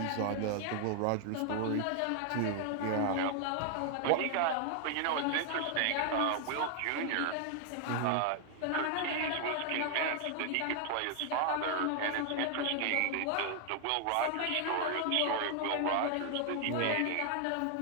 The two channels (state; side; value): different; both; correlation 0.00